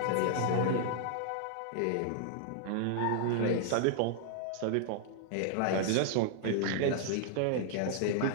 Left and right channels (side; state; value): both; different; correlation -0.01